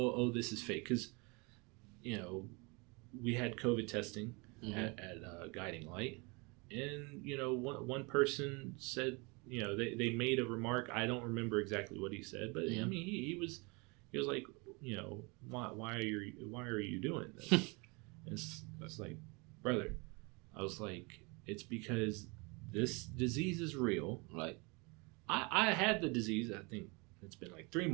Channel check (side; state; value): left; quieter; 28.9 dB